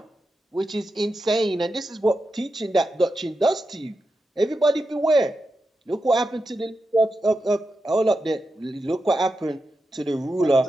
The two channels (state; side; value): normal; both; correlation 0.89